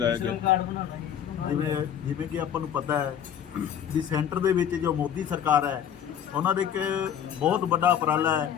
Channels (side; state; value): right; quieter; 9.2 dB